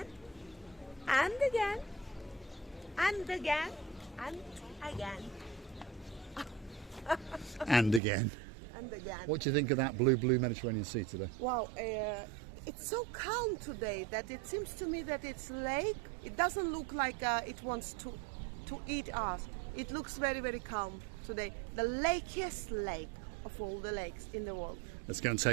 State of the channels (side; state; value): left; drops out; at 8.0 s